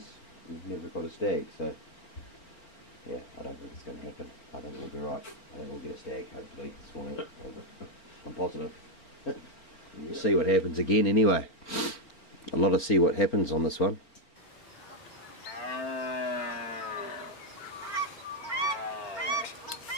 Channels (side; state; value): right; late; 4.4 ms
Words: We've never got a stag, so yeah, I don't think it's going to happen. I think we'll be right. I think we'll get a stag hopefully this morning. I'm positive. We'll see what happens again anyway. A lot of see what happens on this one.